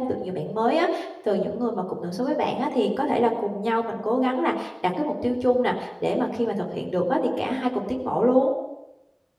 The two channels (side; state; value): both; identical; correlation 1.00